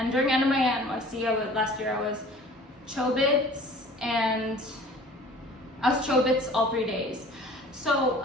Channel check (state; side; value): normal; both; correlation 0.47